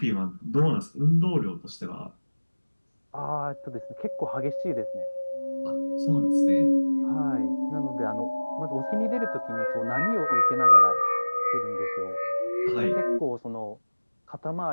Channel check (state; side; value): inverted; both; correlation -1.00